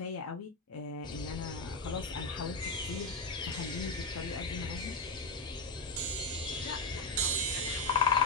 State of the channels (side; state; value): right; quieter; 3.2 dB